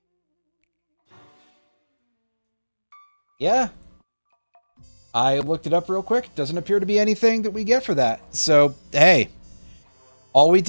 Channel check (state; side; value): inverted; both; correlation -1.00